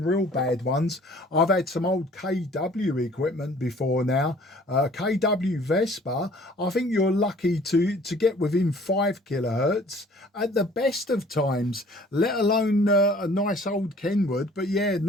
real bad ones, I've had some old KW equipment before now. KW Vespa, I think you're lucky to get within 5 kilohertz at the best of times, let alone a nice old Kenwood. But yeah,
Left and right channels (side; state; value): both; normal; correlation 0.53